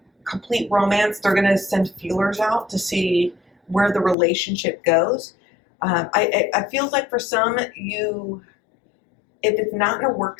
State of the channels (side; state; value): right; drops out; at 4.2 s